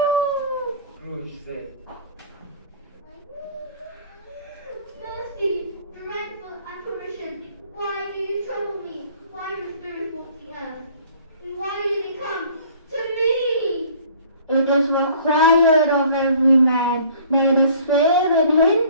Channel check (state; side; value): inverted; both; correlation -0.52